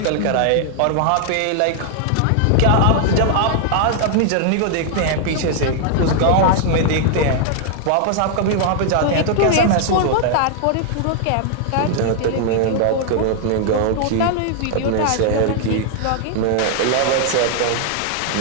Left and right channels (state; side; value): different; both; correlation 0.00